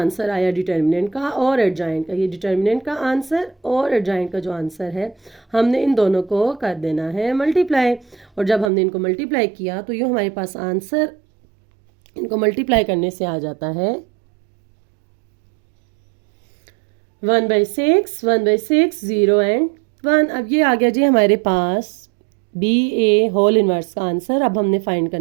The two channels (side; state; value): left; drops out; at 8.7 s